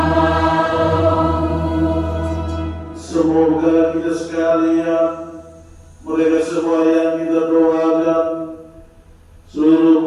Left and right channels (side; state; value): both; identical; correlation 1.00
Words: kita sekalian, mereka semua yang kita doakan,